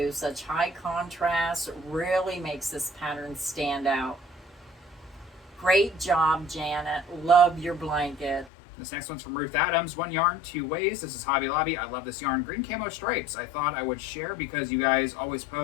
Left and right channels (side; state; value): right; drops out; at 8.5 s